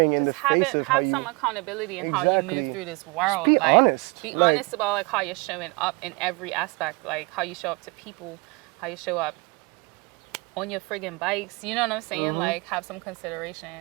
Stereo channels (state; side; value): quieter; left; 27.2 dB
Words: in the face of how have you... some accountability in how you move Exactly. through this world. Just be like, honest. Be Like- honest about like how you're showing up in every aspect, like how you show up to people, how you show up on your friggin' bikes. You know what I'm saying? Like, have some